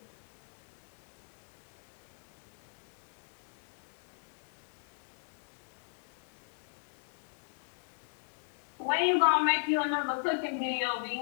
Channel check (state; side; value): silent; right; digital silence